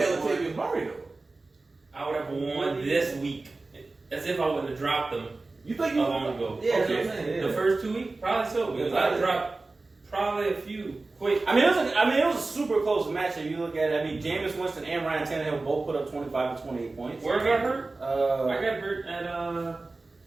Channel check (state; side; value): quieter; left; 3.4 dB